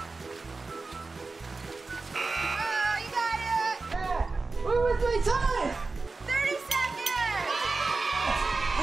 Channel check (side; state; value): left; quieter; 3.8 dB